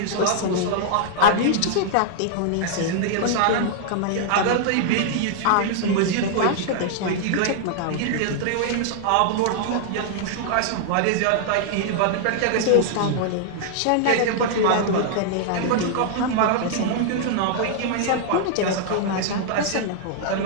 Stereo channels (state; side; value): different; both; correlation -0.01